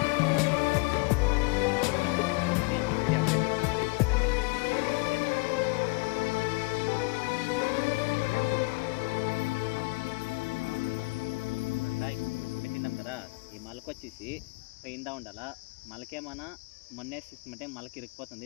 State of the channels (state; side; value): quieter; right; 27.1 dB